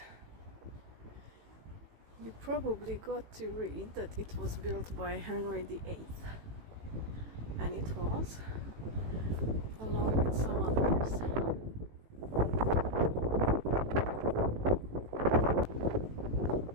You probably got to read that it was built by Henry VIII, and it was, along with some others.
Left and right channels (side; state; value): left; late; 18 ms